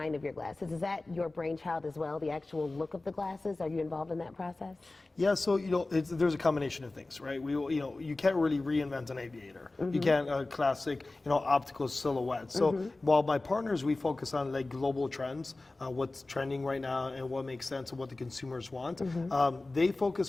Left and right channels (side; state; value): right; quieter; 3.1 dB